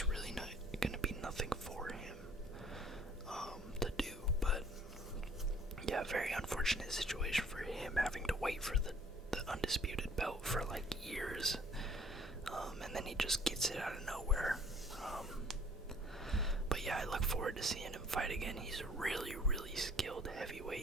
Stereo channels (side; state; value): both; normal; correlation 0.56